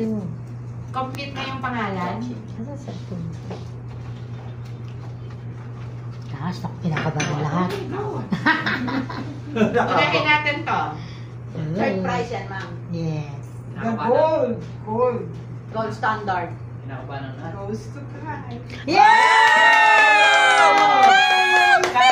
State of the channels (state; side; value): identical; both; correlation 1.00